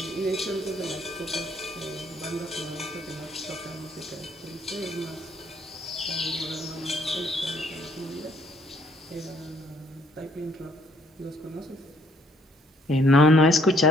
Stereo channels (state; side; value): normal; both; correlation 0.65